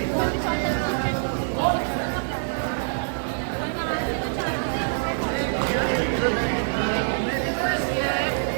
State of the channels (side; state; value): left; silent; digital silence